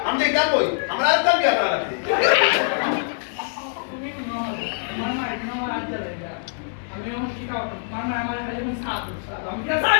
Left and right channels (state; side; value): silent; right; 63 dB below the other